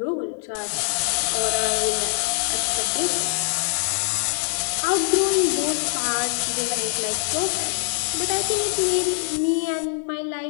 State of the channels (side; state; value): right; silent; 63 dB below the other